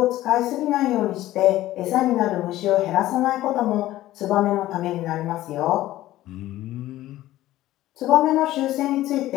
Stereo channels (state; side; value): quieter; right; 15.2 dB